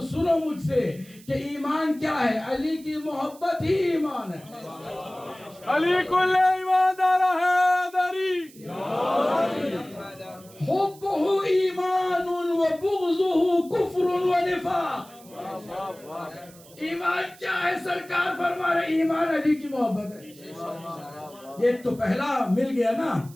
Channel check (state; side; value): noise; right; hiss, 23 dB below the sound